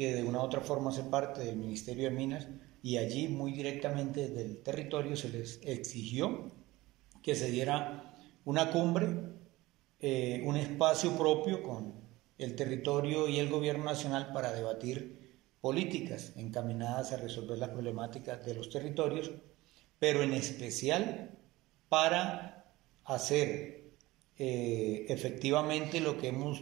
de una u otra forma hace parte del Ministerio de Minas, y allí muy directamente desde el territorio se les exigió que se diera una cumbre, un espacio propio con el territorio y el gobierno nacional para debatir políticas encaminadas a resolver las problemáticas de los territorios, pero en especial para hacer efectivamente lo que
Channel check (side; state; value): left; quieter; 19.2 dB